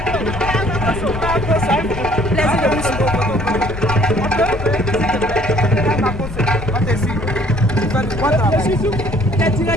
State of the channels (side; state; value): left; noise; rumble, 9 dB below the sound